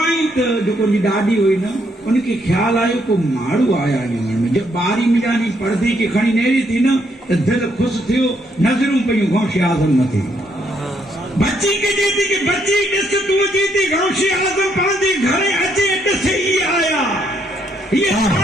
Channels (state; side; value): normal; both; correlation 0.73